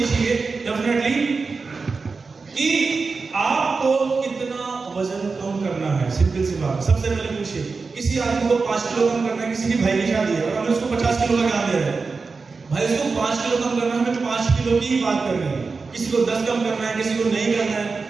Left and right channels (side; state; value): left; quieter; 4.4 dB